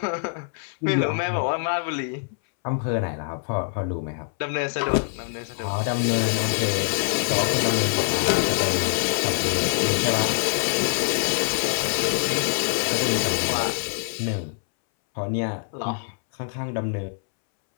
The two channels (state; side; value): silent; right; 62 dB below the other